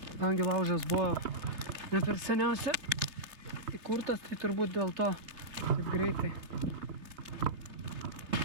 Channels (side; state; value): left; late; 3.2 ms